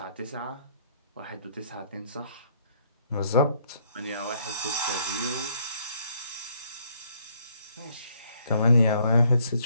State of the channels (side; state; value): both; inverted; correlation -0.66